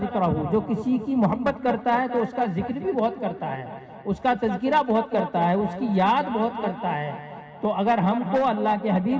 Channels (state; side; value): identical; both; correlation 1.00